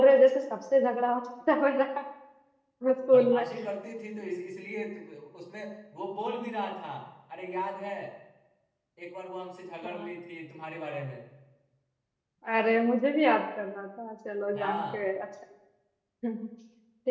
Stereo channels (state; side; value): identical; both; correlation 1.00